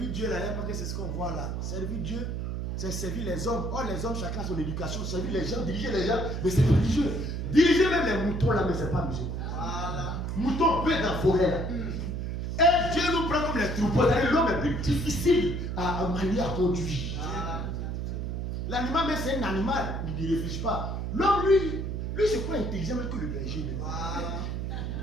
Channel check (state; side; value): noise; right; hum, 3 dB below the sound